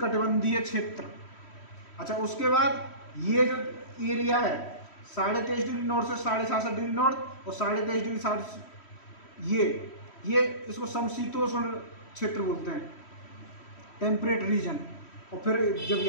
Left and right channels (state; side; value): late; right; 3.1 ms